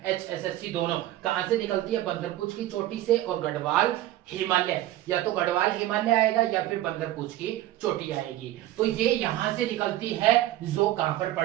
HSSC दोनों। कहां से निकलती है? बंदरपूछ की चोटी से और गढ़वाल हिमालय। या तो गढ़वाल हिमालय आएगा या फिर बंदरपूछ की चोटी आएगी। तो ये यहां से निकलती है, जो कहां पर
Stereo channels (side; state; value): left; quieter; 14.5 dB